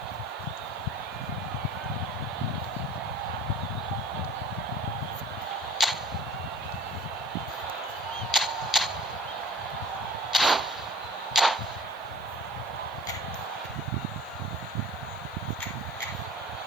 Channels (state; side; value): noise; right; hiss, 27 dB below the sound